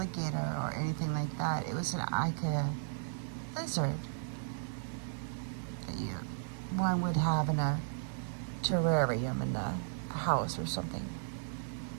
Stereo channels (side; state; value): left; silent; 54 dB below the other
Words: or anything like that. It was like a lizard that one would have in a terrarium in the house or something.